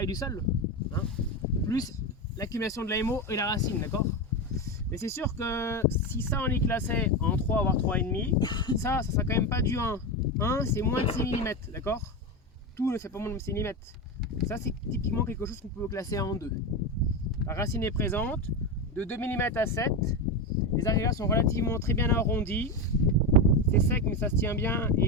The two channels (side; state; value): both; normal; correlation 0.15